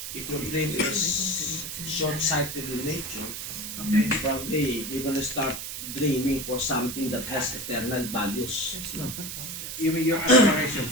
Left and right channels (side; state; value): right; noise; hiss, 7 dB below the sound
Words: If your dream is short-sighted in nature, Okay. probably you're gonna start dreaming for something that has eternal values. No? Even your